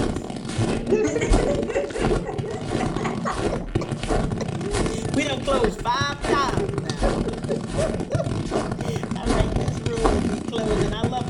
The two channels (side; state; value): both; identical; correlation 1.00